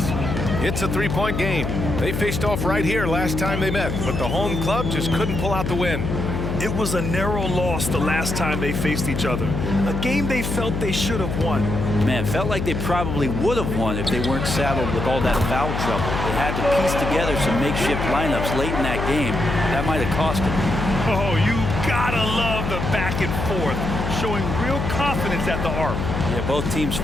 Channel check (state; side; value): noise; left; hum, 3 dB below the sound